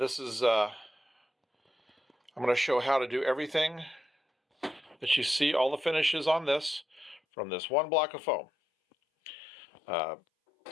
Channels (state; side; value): drops out; right; at 7.2 s